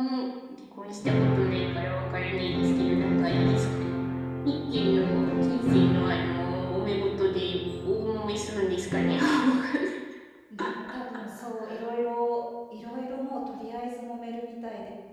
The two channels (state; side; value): identical; both; correlation 1.00